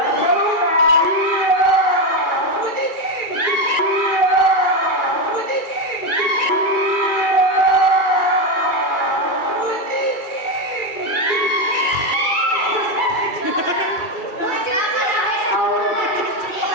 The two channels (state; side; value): late; right; 2.3 ms